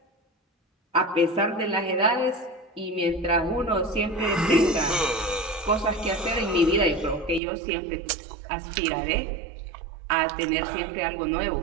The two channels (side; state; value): left; drops out; at 7.4 s